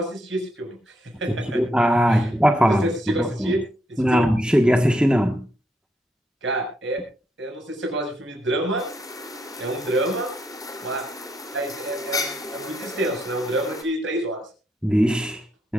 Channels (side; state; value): both; normal; correlation 0.78